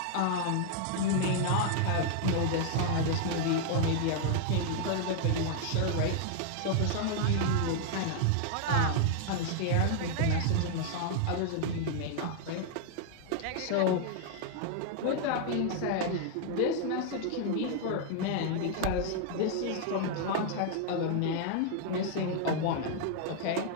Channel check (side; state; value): both; different; correlation -0.01